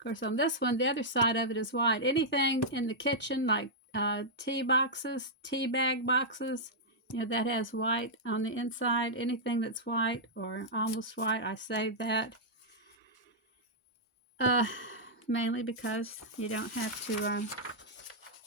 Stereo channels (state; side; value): normal; both; correlation -0.08